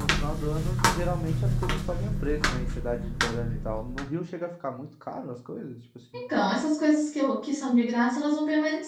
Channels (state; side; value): identical; both; correlation 1.00